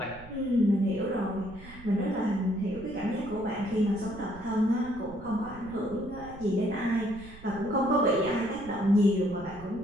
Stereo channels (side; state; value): right; noise; rumble, 18 dB below the sound